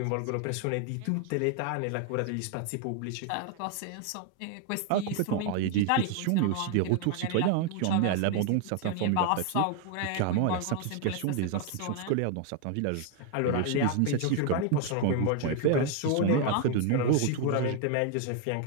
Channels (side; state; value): both; different; correlation 0.01